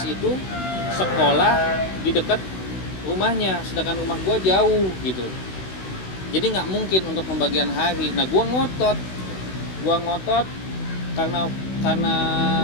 itu sekolah di dekat rumahnya, sedangkan rumah gue jauh gitu. Jadi nggak mungkin untuk pembagian hari. Nah, gue ngotot karena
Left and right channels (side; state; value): right; late; 16 ms